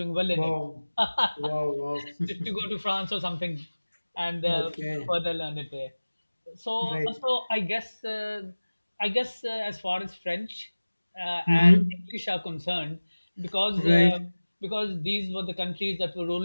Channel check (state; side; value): inverted; both; correlation -1.00